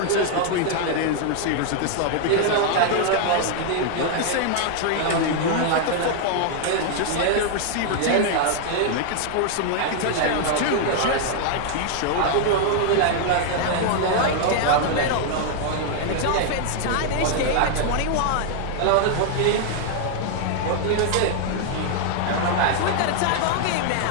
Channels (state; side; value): different; both; correlation 0.00